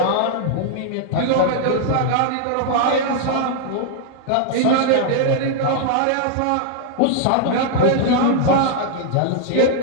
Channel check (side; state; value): both; different; correlation -0.01